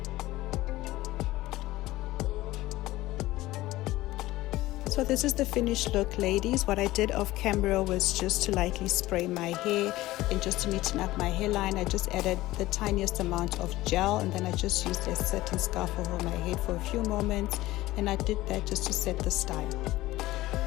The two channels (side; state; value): right; quieter; 17.4 dB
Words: So this is the finished look, ladies. What I did off camera was just to lightly spray my hair and just to neaten up my hairline. I just added the tiniest amount of gel and then I just used a satin scarf over my head for a few moments, and I did that just to set the style.